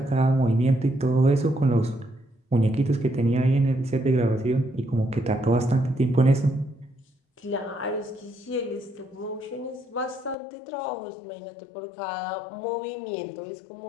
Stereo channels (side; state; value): right; drops out; at 10.4 s